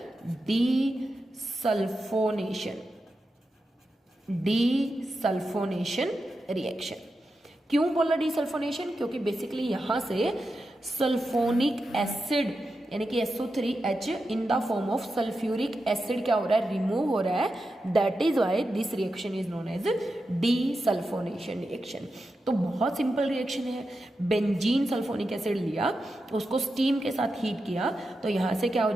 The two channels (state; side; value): normal; both; correlation 0.89